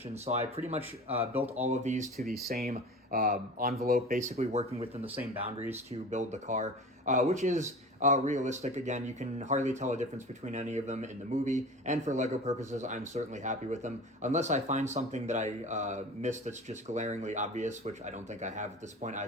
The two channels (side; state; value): both; normal; correlation 0.36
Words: So I pretty much built all of these to the same envelope, basically working within the same boundaries to build the car, which is realistic. Again, you can hardly tell a difference between any of them in the movie, and for Lego purposes, I'm certainly happy with them, unless I find something that I missed that's just glaringly obvious, which I don't think I have at this point.